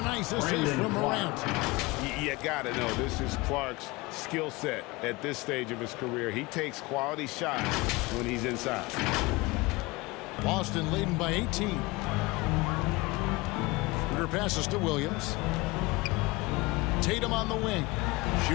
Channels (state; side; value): quieter; right; 23.1 dB